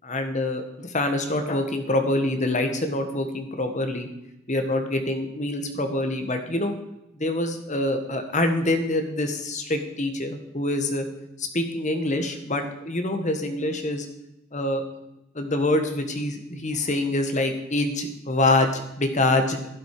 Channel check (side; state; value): both; normal; correlation 0.39